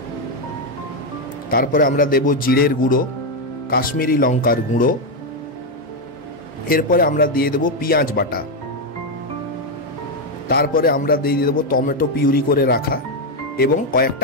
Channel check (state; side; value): normal; both; correlation 0.05